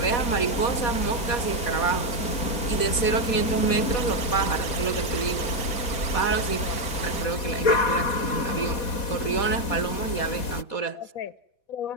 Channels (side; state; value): right; late; 4.1 ms